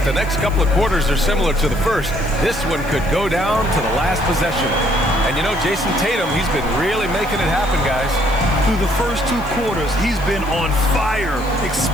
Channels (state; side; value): noise; left; hiss, 21 dB below the sound